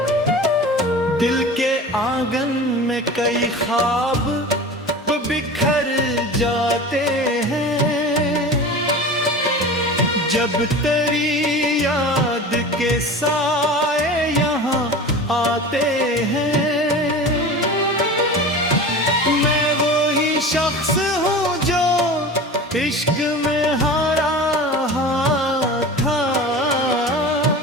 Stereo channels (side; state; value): both; normal; correlation 0.34